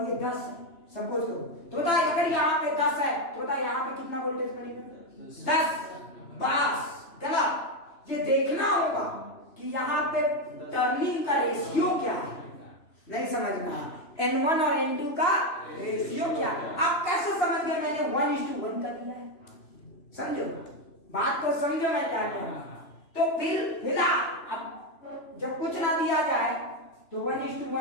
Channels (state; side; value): late; right; 2.9 ms